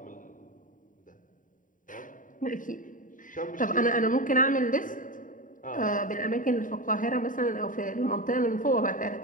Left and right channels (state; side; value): late; right; 0.38 ms